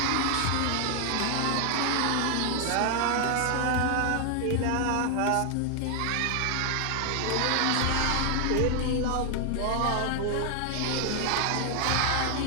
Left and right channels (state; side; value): different; both; correlation 0.00